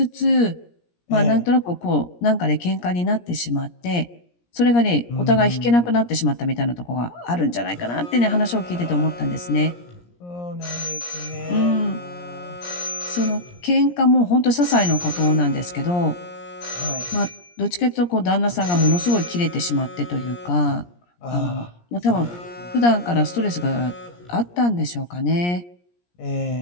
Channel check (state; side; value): late; right; 17 ms